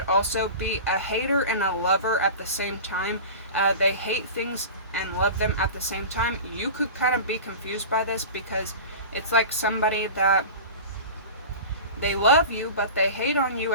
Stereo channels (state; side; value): inverted; both; correlation -0.33